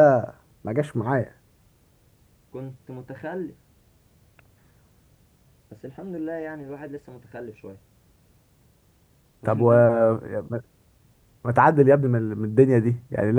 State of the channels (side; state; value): both; identical; correlation 1.00